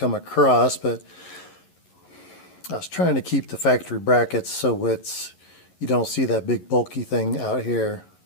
across, but I was trying to keep the factory brackets so you don't see that big bulky thing out here.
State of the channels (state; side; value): late; right; 11 ms